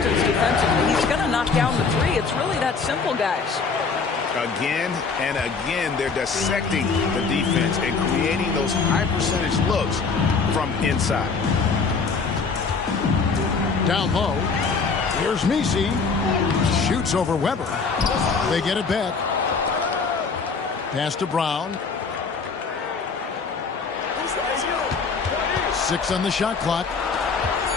defensively, he's going to knock down the 3. It's really that simple, guys. Again and again, they're dissecting the defense and creating those high percentage looks from inside. Down low. Here's Misi. Shoots over Weber. They get it back. Pass to Brown. 6 on the shot clock.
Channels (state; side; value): quieter; right; 4.9 dB